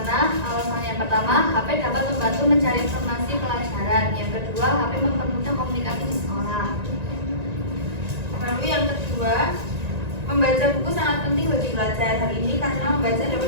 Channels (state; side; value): late; left; 1.9 ms